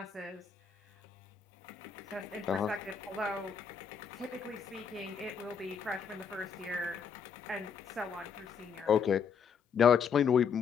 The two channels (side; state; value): right; quieter; 6.6 dB